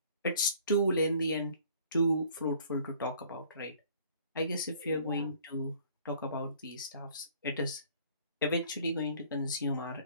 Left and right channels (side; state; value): both; inverted; correlation -0.55